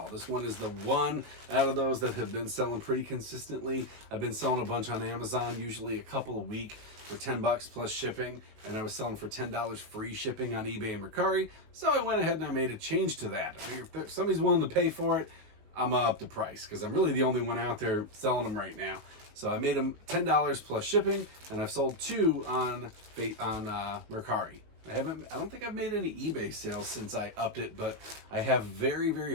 This one is the one out of those that have been selling pretty consistently. I've been selling a bunch on Amazon, usually a couple a week for $10 plus shipping, and I was selling for $10 free shipping on eBay and Mercari. So I went ahead and I made a change to that. I figured if somebody's willing to pay for it, I'm gonna up the price because I'm really the only one out there selling them right now. So I made them $10 plus shipping, and I've sold 2 on Mercari. I don't think I've made any eBay sales since I upped it, but I have very, very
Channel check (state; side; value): late; left; 19 ms